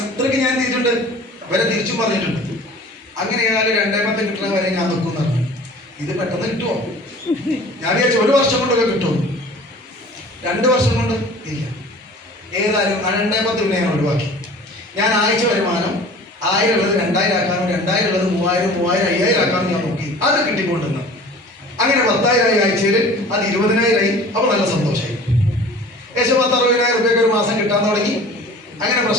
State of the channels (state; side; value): normal; both; correlation 0.44